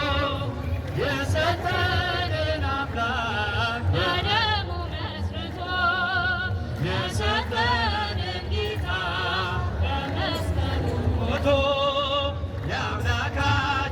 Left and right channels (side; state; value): both; identical; correlation 1.00